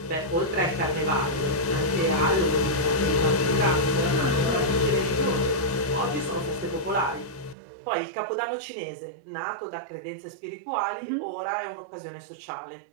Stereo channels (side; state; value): left; drops out; at 7.6 s